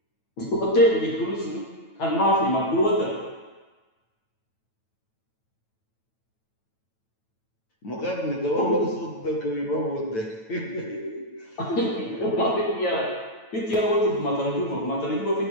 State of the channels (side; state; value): right; late; 9.1 ms